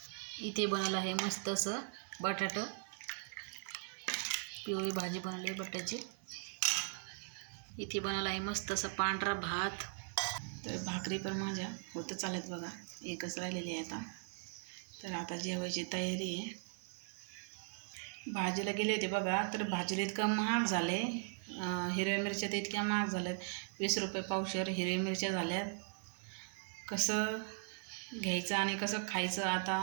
इथे बनवलं आहे मस्त असं बटाटं, पिवळी भाजी बनवली आहे बटाट्याची. इथे बनवलं आहे मस्त असं पांढरा भात. तर भाकरी पण माझ्या होतं चालत बघा, एकच राहिलेली आहे आता. तर आता जेवायची तयारी आहे. भाजीला गेले होते बघा, तर भाजीला इतकं महाग झाले. हिरव्या मिरच्या तर इतक्या महाग झाल्यात, 20 रुपये पावशेर हिरव्या मिरच्या झाल्यात. कसं घ्यायचं आणि कसं खायचं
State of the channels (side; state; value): left; silent; 52 dB below the other